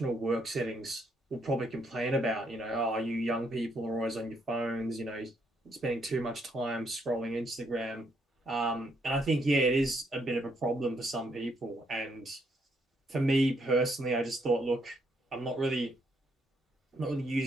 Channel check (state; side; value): normal; both; correlation 0.73